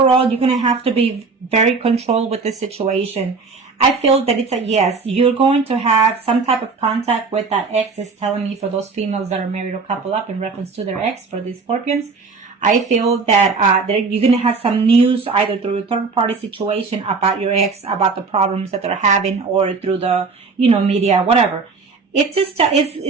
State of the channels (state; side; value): quieter; left; 4.5 dB